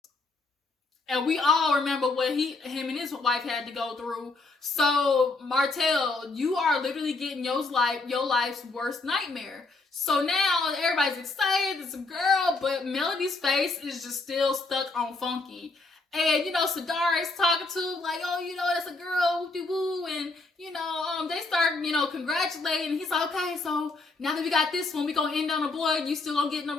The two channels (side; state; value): right; quieter; 3.5 dB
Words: And we all remember what him and his wife had to go through. So, Martell, you are literally getting your life's worst nightmare. So now everybody's excited. It's a girl, but Melody's face is just still stuck on funky. And, you know, Sadara is talking to, like, oh, you know, that's a girl, whoop-de-woo. And, you know, they start, you know, congratulating. He's like, okay, so now that we got this one, we gonna end on a boy. You still gonna get